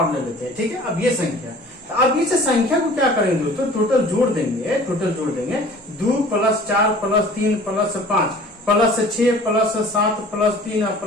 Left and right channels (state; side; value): normal; both; correlation 0.47